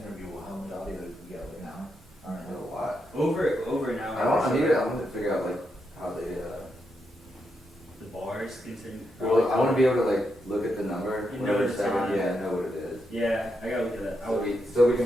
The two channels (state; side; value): normal; both; correlation 0.83